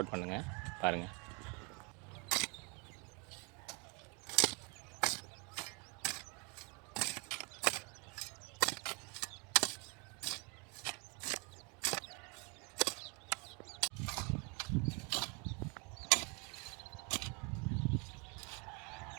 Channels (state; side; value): quieter; left; 32.7 dB